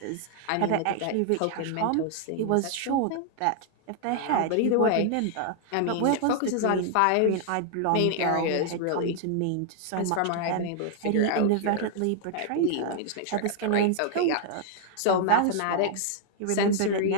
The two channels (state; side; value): different; both; correlation 0.00